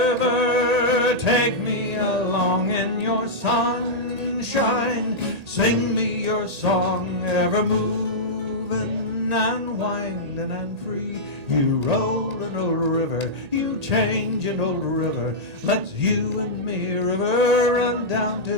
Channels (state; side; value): late; left; 1.8 ms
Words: take me along in your sunshine. Sing me your song, ever moving and winding and free. You roll an old river, you change an old river. Let's you and me, river, run down